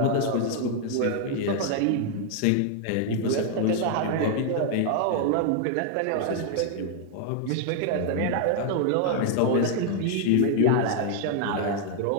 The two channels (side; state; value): both; different; correlation 0.00